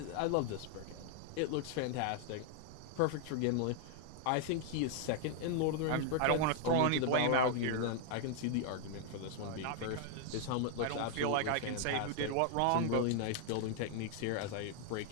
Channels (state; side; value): different; both; correlation 0.00